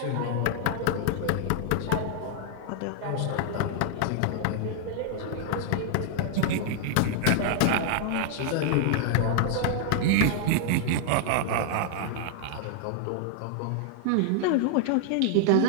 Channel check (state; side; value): different; both; correlation -0.01